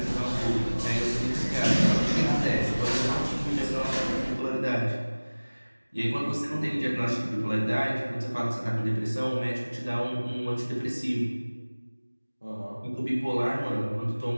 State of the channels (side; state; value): both; inverted; correlation -1.00